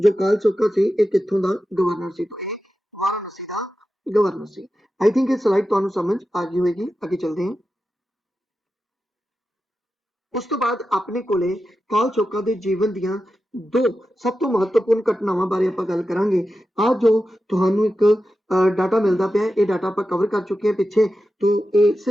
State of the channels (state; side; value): normal; both; correlation 0.91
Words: कालचोका ਸੀ ਇਹ ਕਿੱਥੋਂ ਦਾ ਗਵਰਨਰ ਸੀ तो ਇਹ ਵਾਰਾਣਸੀ ਦਾ ਗਵਰਨਰ ਸੀ। आई थिंक ਇਹ ਸਲਾਈਡ ਤੁਹਾਨੂੰ ਸਮਝ ਆ ਗਈ ਹੋਏਗੀ। ਅੱਗੇ ਚੱਲਦੇ ਹਾਂ। ਉਸ ਤੋਂ ਬਾਅਦ ਆਪਣੇ ਕੋਲੇ ਕਾਲਚੋਕਾ ਦੇ ਜੀਵਨ ਦੀਆਂ ਦੋ ਸਭ ਤੋਂ ਮਹੱਤਵਪੂਰਨ ਘਟਨਾਵਾਂ ਬਾਰੇ ਆਪਾਂ ਗੱਲ ਕਰਾਂਗੇ। ਆ ਜੋ ਤੁਹਾਨੂੰ ਇੱਕ ਡਾਟਾ ਮਿਲਦਾ ਪਿਆ ਇਹ ਡਾਟਾ ਆਪਾਂ ਕਵਰ ਕਰ ਚੁੱਕੇ ਹਾਂ ਪਿੱਛੇ तो ਇਹ